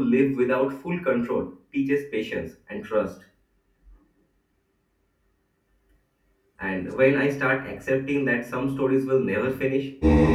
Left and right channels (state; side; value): identical; both; correlation 1.00